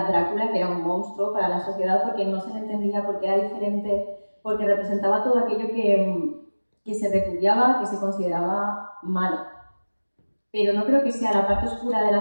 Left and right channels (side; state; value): both; inverted; correlation -1.00